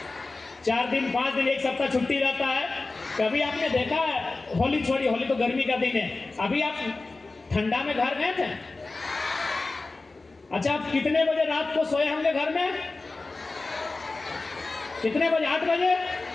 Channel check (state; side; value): quieter; right; 3.5 dB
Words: 4 दिन 5 दिन 1 सप्ताह छुट्टी रहता है, कभी आपने देखा है? होली छोड़िए, होली तो गर्मी का दिन है, अभी आप ठंडा में घर गए थे? अच्छा, आप कितने बजे रात को सोए होंगे घर में? कितने बजे? 8 बजे?